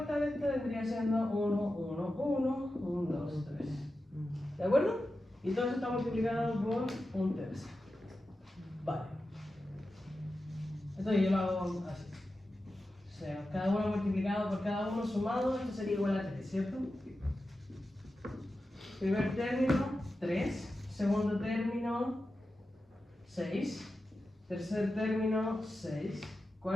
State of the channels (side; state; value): both; normal; correlation 0.92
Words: de esta vendría siendo 1, 1, 1, 1, 2, 3. ¿De acuerdo? Y todo eso está multiplicado por un tercio. Vale. Entonces yo lo hago así. O sea, cada uno multiplicado por cada uno sumado, esto sería igual a 3, ¿cierto? Primer término, 3. Segundo término, 6. Tercer término, 6.